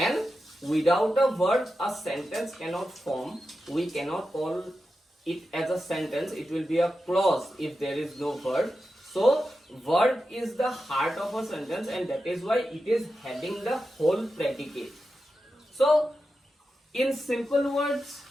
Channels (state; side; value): normal; both; correlation 0.90